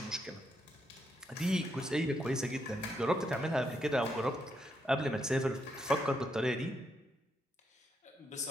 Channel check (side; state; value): both; normal; correlation 0.79